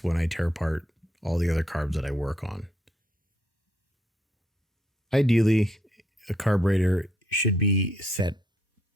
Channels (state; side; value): normal; both; correlation 0.73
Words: when I tear apart all the other carbs that I work on. Ideally, a carburetor should be set